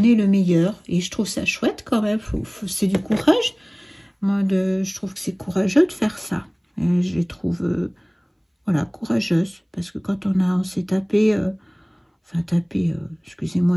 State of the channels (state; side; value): identical; both; correlation 1.00